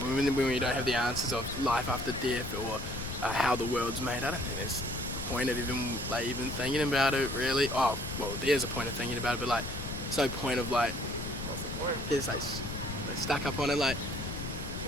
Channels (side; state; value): left; noise; rumble, 8 dB below the sound